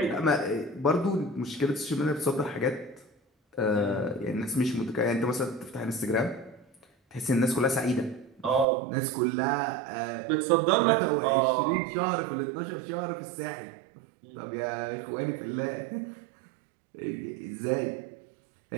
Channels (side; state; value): left; drops out; at 8.7 s